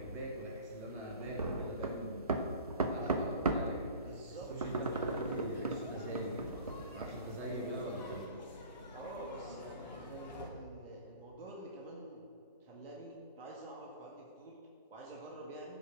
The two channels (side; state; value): both; inverted; correlation -0.42